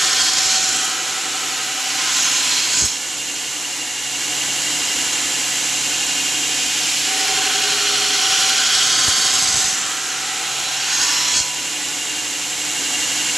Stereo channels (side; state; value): both; normal; correlation 0.94